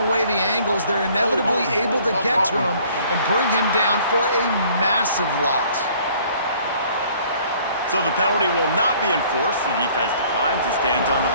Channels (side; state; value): both; inverted; correlation -0.56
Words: the angles. They're inevitably able to get to him and bring him down for a massive loss. So the penalty will not be enforced. The defense declines and stands on the